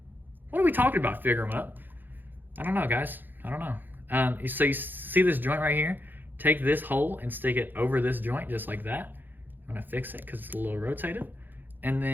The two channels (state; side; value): late; left; 0.090 ms